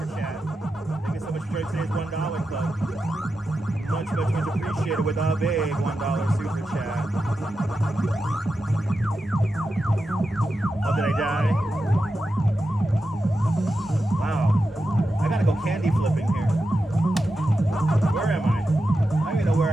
chat. Thank you so much for today's $1 club. Much, much, much appreciated with a big $1 super chat. Oh, did I die? Wow. I gotta go candy flipping here. Where am I? I don't even know where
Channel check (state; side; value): normal; both; correlation 0.90